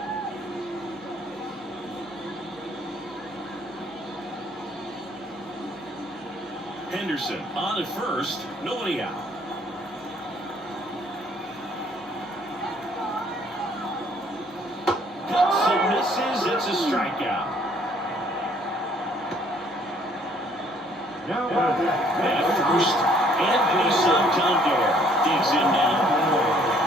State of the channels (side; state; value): both; normal; correlation 0.62